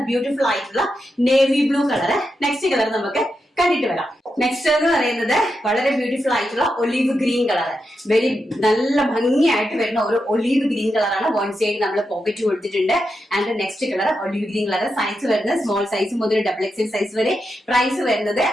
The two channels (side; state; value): both; normal; correlation 0.86